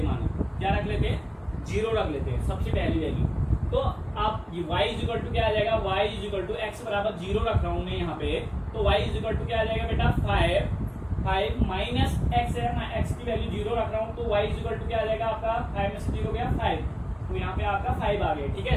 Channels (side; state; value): both; identical; correlation 1.00